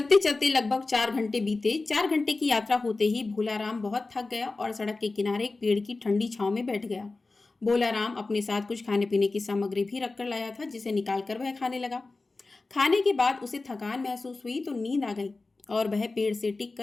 चलते लगभग 4 घंटे बीते। 4 घंटे की यात्रा होते ही भोलाराम बहुत थक गया और सड़क के किनारे एक पेड़ की ठंडी छांव में बैठ गया। भोलाराम अपने साथ कुछ खाने पीने की सामग्री भी रख कर लाया था, जिसे निकालकर वह खाने लगा। खाने के बाद उसे थकान महसूस हुई तो नींद आ गई और वह पेड़ से टिक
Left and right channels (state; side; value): quieter; right; 3.5 dB